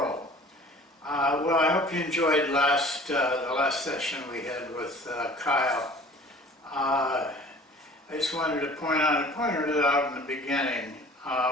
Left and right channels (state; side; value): normal; both; correlation 0.47